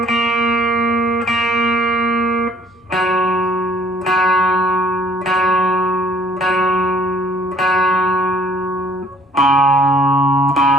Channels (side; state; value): both; normal; correlation 0.59